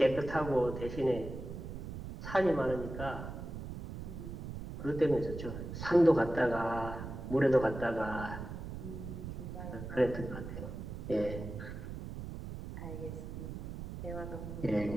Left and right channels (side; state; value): right; noise; rumble, 8 dB below the sound